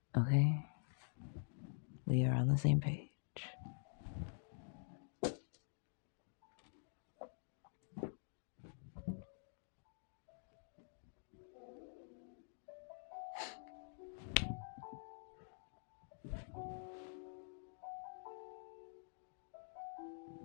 Okay? We are on the same page.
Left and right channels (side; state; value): right; silent; digital silence